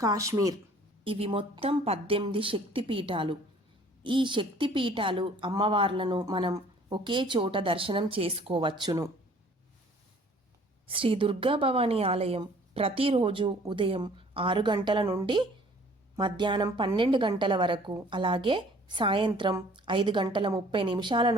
ఇవి మొత్తం 18 శక్తిపీఠాలు. ఈ శక్తిపీఠాలు అమ్మవార్లను మనం ఒకే చోట దర్శనం చేసుకోవచ్చును. శ్రీ దుర్గా భవానీ ఆలయం ప్రతిరోజు ఉదయం 6 గంటల నుండి మధ్యాహ్నం 12 గంటల వరకు, అలాగే సాయంత్రం 5:30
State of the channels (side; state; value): both; normal; correlation 0.54